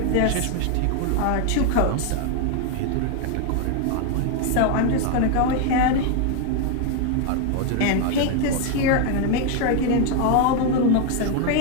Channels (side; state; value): both; different; correlation 0.01